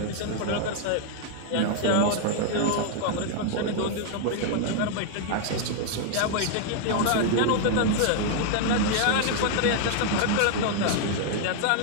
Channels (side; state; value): both; different; correlation 0.00